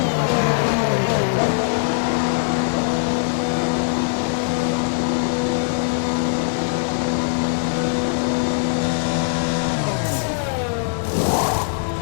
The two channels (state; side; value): silent; right; digital silence